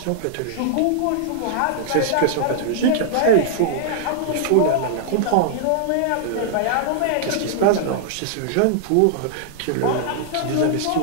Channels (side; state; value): both; different; correlation -0.01